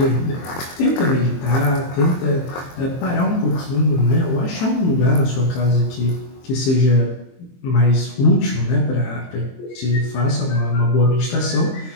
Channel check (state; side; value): late; right; 23 ms